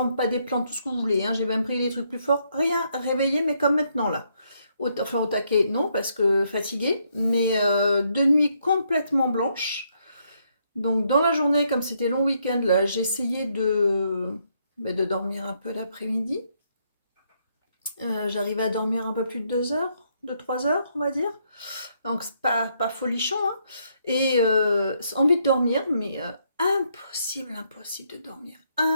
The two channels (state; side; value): inverted; both; correlation -0.74